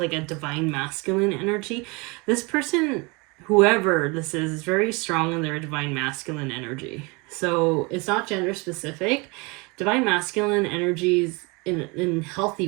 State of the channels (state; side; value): quieter; left; 28.1 dB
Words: a divine masculine energy, this person, whoever this is very strong in their divine masculine energy. So it's not gender specific. Divine masculine energies in healthy